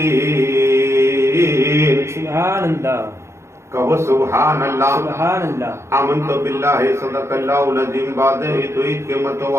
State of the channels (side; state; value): left; late; 0.13 ms